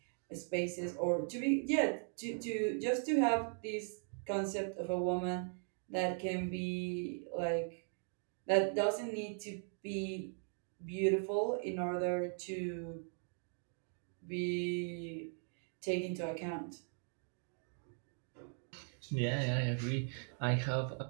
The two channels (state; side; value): silent; left; 52 dB below the other